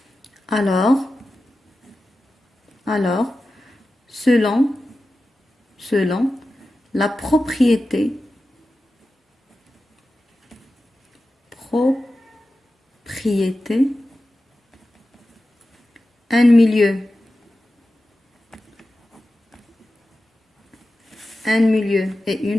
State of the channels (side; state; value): both; normal; correlation 0.93